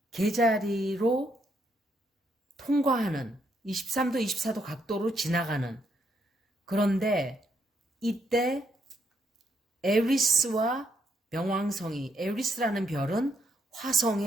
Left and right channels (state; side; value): normal; both; correlation 0.75